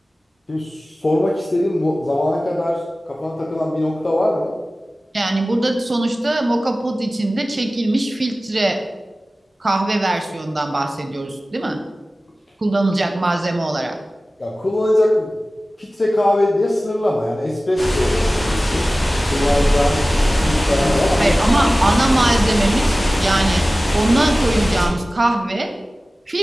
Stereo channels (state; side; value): normal; both; correlation 0.97